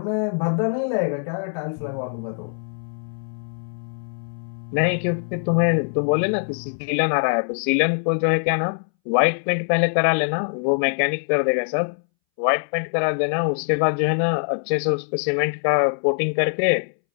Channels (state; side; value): silent; right; 63 dB below the other